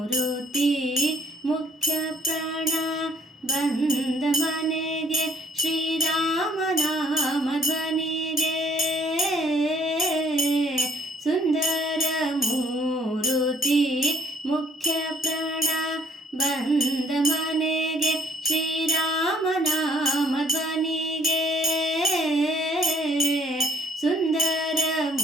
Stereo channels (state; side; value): normal; both; correlation 0.60